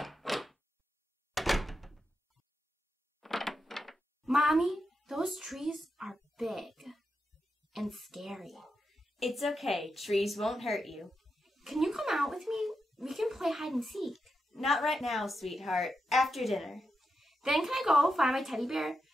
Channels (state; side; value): normal; both; correlation 0.87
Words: Mommy, those trees are big and scary. It's okay. Trees won't hurt you. Can you come out with me? We can play hide and seek. Not right now, sweetheart. After dinner. Then can I go find my teddy bear?